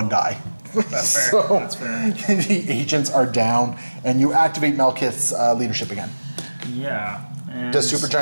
die. That's fair. So, That's fair. The agents are down, and you activate Malekith's leadership again. Yeah. And, Does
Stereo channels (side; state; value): both; inverted; correlation -1.00